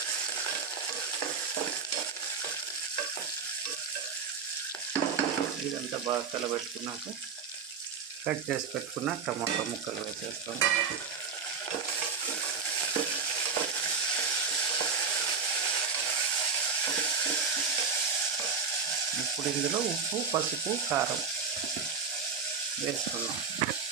ఇదంతా బాగా కలబెట్టుకున్నాక కట్ చేసి పెట్టుకున్న టమాటా ముక్కలు వేసేస్తాం. ఇప్పుడు ఇందులో ఉప్పు, పసుపు, కారం వేసుకున్నాం.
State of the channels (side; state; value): left; quieter; 5.6 dB